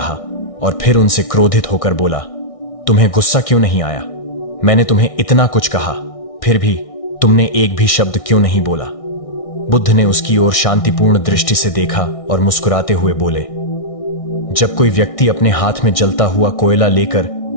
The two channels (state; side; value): late; right; 1.6 ms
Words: और फिर उनसे क्रोधित होकर बोला, तुम्हें गुस्सा क्यों नहीं आया? मैंने तुम्हें इतना कुछ कहा, फिर भी तुमने एक भी शब्द क्यों नहीं बोला? बुद्ध ने उसकी ओर शांतिपूर्ण दृष्टि से देखा और मुस्कुराते हुए बोले, जब कोई व्यक्ति अपने हाथ में जलता हुआ कोयला लेकर